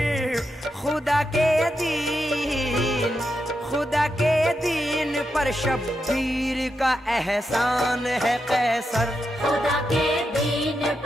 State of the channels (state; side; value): normal; both; correlation 0.86